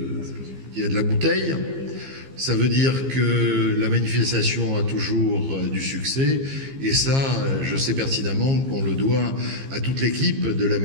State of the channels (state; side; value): late; left; 15 ms